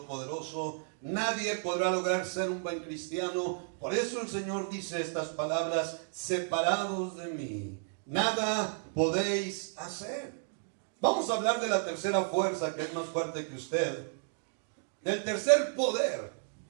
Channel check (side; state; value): left; silent; digital silence